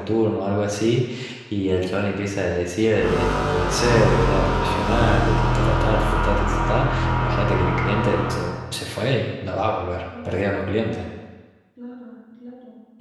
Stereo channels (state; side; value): identical; both; correlation 1.00